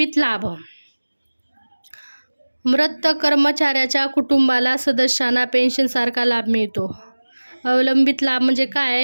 लाभ. मृत कर्मचाऱ्याच्या कुटुंबाला सदस्यांना पेन्शनसारखा लाभ मिळतो. अवलंबित लाभ म्हणजे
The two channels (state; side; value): inverted; both; correlation -1.00